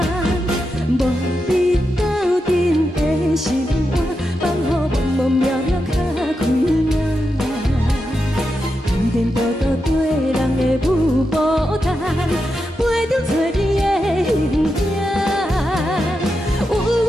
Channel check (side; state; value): both; normal; correlation 0.87